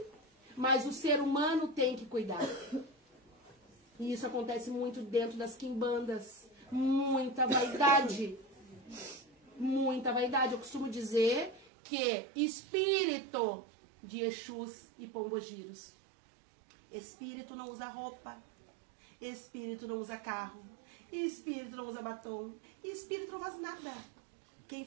Mas o ser humano tem que cuidar. E isso acontece muito dentro das quimbandas. Muita vaidade. Muita vaidade. Eu costumo dizer que espírito de Exus e Pombogiros. Espírito não usa roupa. Espírito não usa carro. Espírito não usa batom. Espírito não faz nada. Quem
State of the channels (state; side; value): drops out; left; at 11.7 s